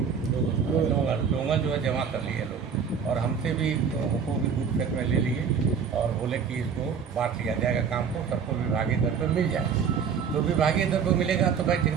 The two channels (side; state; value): left; quieter; 6.6 dB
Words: जमा कर लिए लोग, और हमसे भी हमको भी कुछ खेत में ले लिए और बोले कि इसको बांट लिया जाएगा, काम को सबको विभागीय दर पर मिल जाए। तो विभागीय दर पर मिलेगा तो भाई